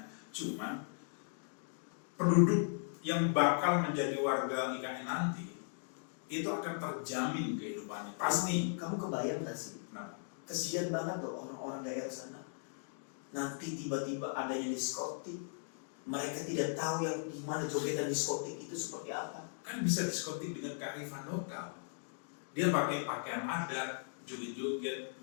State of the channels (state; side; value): silent; right; digital silence